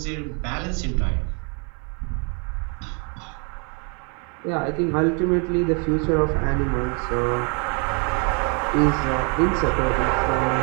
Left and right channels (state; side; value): quieter; left; 36.7 dB